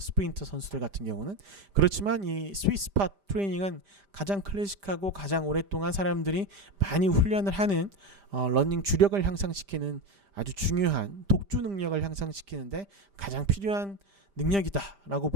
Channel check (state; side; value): late; left; 5.0 ms